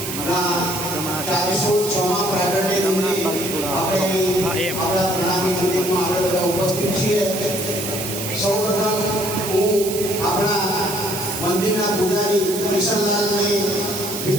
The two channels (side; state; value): right; noise; hiss, 6 dB below the sound